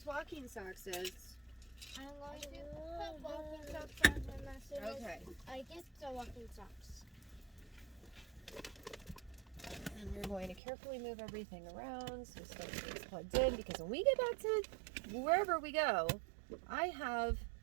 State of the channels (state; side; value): drops out; left; at 10.6 s